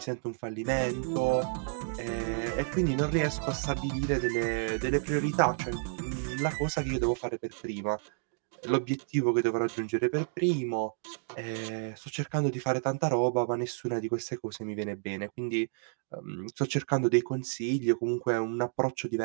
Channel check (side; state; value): left; silent; 57 dB below the other